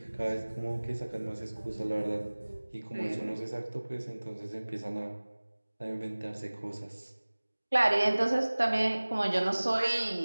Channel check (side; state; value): both; inverted; correlation -1.00